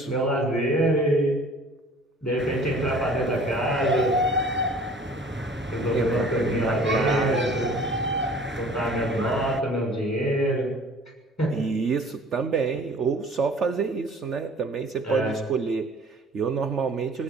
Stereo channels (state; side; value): normal; both; correlation 0.49